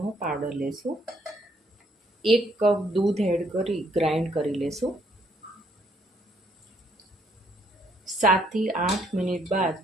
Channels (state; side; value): normal; both; correlation 0.69